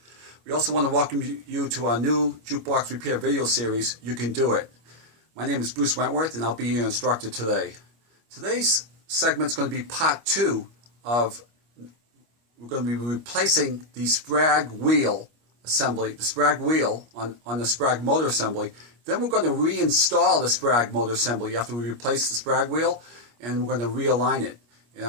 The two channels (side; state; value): left; late; 25 ms